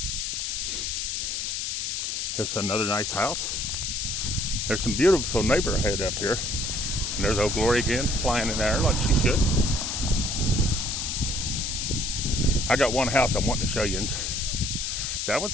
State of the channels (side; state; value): left; noise; hiss, 2 dB below the sound